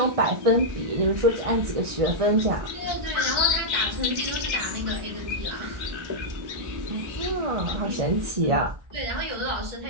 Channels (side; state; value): left; late; 1.4 ms